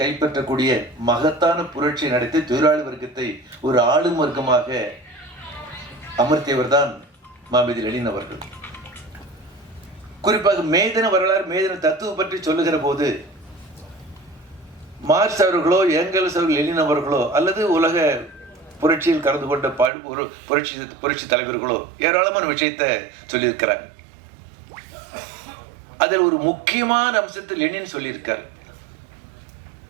கைப்பற்றக்கூடிய மகத்தான புரட்சி நடத்தி தொழிலாளி வர்க்கத்தை ஒரு ஆளும் வர்க்கமாக அமர்த்தியவர் தான் மாமேதை லெனின் அவர்கள். குறிப்பாக மேதின வரலாறு, மேதின தத்துவம் பற்றி சொல்லுகிற போது மார்க்ஸ் அவர்களோ ஏங்கல்ஸ் அவர்கள் லெனின் அவர்களோ அல்லது உலக புரட்சியில் கலந்து கொண்ட ஒரு புரட்சி தலைவர்களோ ஏராளமான விஷயத்தை சொல்லியிருக்கிறாங்க. அதில் ஒரு முக்கியமான அம்சத்தை லெனின் சொல்லியிருக்கார்.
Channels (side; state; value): left; drops out; at 19.9 s